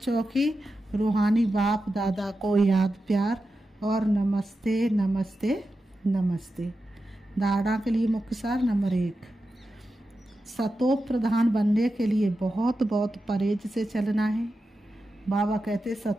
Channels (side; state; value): both; normal; correlation 0.90